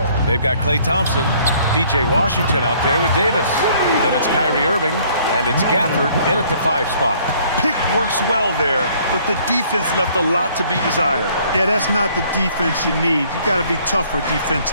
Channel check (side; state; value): both; inverted; correlation -0.60